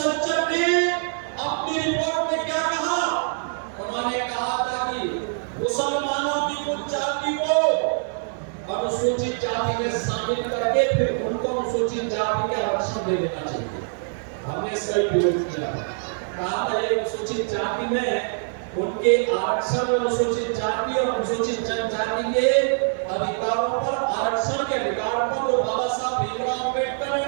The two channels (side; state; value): left; silent; digital silence